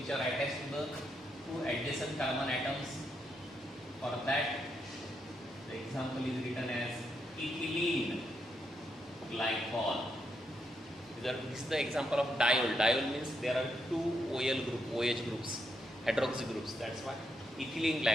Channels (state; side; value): normal; both; correlation 0.80